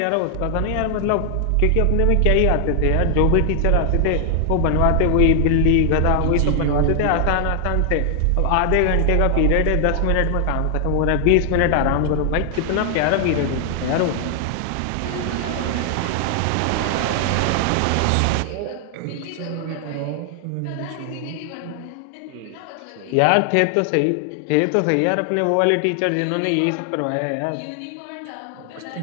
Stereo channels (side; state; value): both; different; correlation 0.00